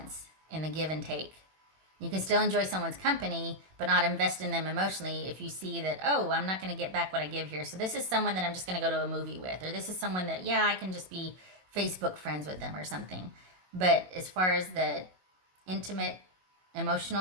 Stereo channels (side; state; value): left; late; 21 ms